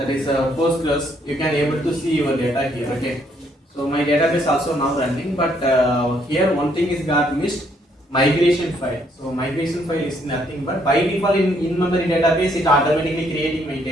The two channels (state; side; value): normal; both; correlation 0.70